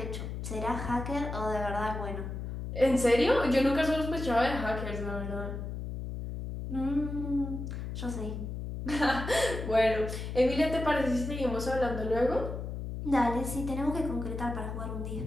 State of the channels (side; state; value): left; noise; hum, 6 dB below the sound